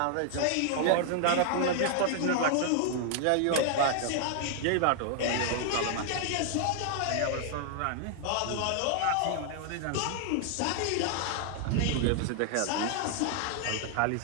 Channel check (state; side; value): different; both; correlation 0.00